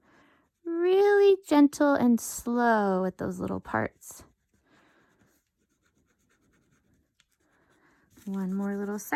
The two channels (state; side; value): identical; both; correlation 1.00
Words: really gentle and slow with those little parts. One more little